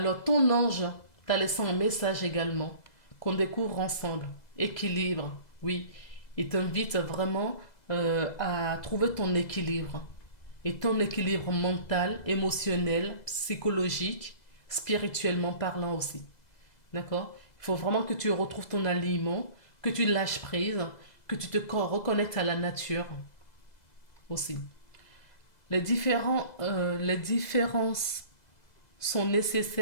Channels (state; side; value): late; right; 2.0 ms